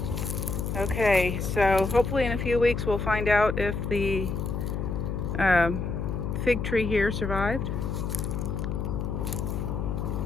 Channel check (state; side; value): noise; left; hum, 2 dB below the sound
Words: Okay, so hopefully in a few weeks we'll find out if the fig tree here survived.